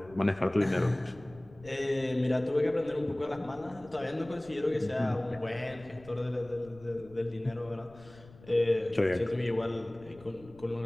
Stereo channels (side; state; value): left; noise; rumble, 22 dB below the sound